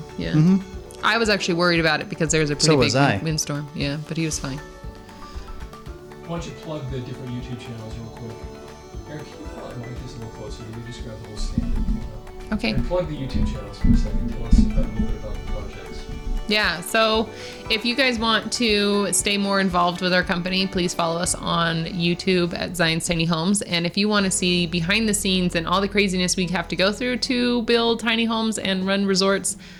Yeah. I was actually worried about it because there was a pretty So big was I. windstorm. Yeah, but he was fine. Why don't you plug the different YouTube channels real quick? Eric, can you pull that mic just a little closer? You just grab the whole stand. Okay. And plug the YouTube channels for a second. Tell us a little bit about the projects. Yeah, so if you guys want to stay more involved with our company, please follow us on YouTube at Zion's Tiny Homes. And if you want to see behind the scenes and all the craziness we have to go through to build tiny homes and run resorts,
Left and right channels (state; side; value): identical; both; correlation 1.00